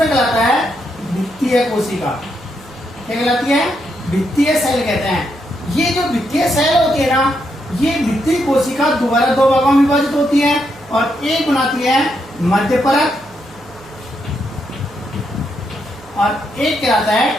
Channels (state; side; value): noise; right; hum, 24 dB below the sound